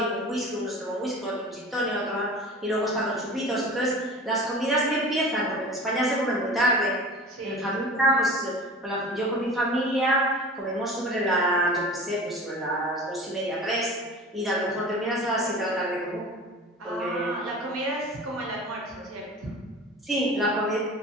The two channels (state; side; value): normal; both; correlation 0.37